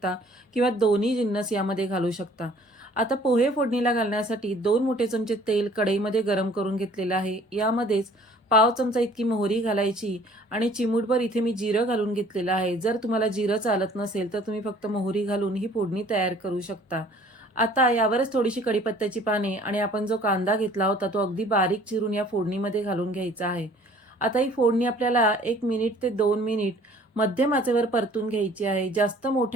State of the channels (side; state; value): both; normal; correlation 0.54